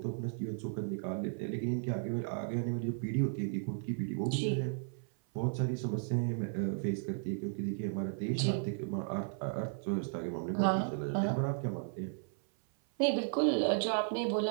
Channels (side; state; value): left; silent; 54 dB below the other